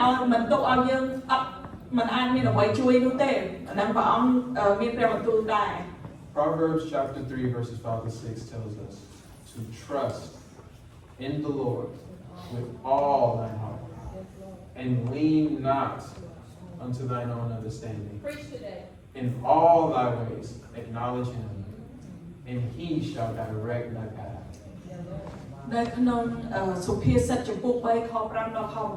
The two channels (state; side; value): identical; both; correlation 1.00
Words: មិនទុកឲ្យយើងអត់មិនអាចមានអ្វីជួយនោះទេអាហ្នឹងព្រះអង្គមានព្រះបន្ទូលដែរ Proverbs chapter 3, verses 5 to 6 tells us to trust in the Lord with all thine heart and lean not unto thine own understanding. In all thy ways acknowledge Him, and He shall direct thy path. នៅក្នុងសុភាសិតចំពោះ3ខ5ដល់ខ